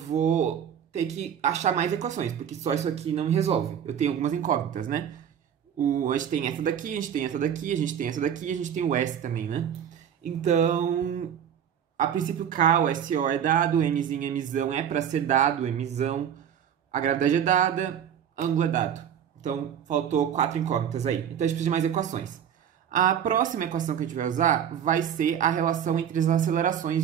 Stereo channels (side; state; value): left; quieter; 8.9 dB